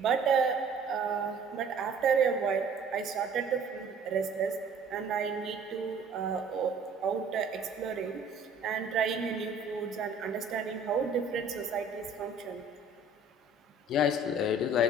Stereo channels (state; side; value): quieter; left; 3.1 dB